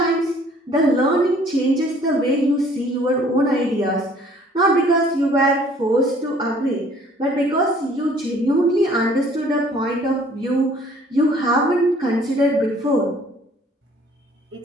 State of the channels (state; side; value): normal; both; correlation 0.56